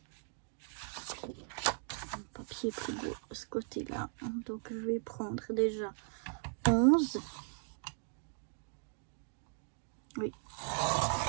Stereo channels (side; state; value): left; silent; digital silence